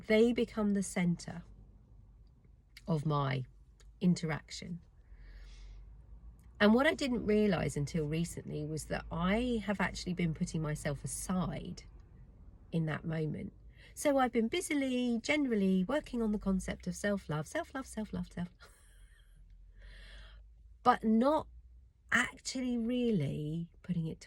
they become the center of my interaction. And what I didn't realize until recently was that I have actually been putting myself aside in that moment. So I've been busily, generally working on the concept of self-love, self-love, self-love, self-love, but not actually really putting it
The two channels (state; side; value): identical; both; correlation 1.00